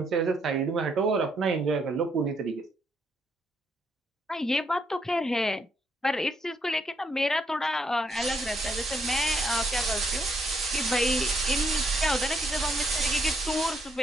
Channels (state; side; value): normal; both; correlation 0.74